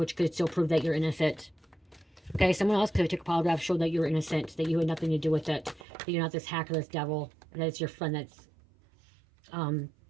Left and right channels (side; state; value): left; drops out; at 5.9 s